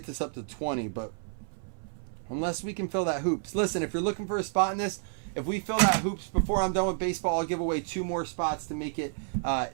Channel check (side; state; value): left; silent; 57 dB below the other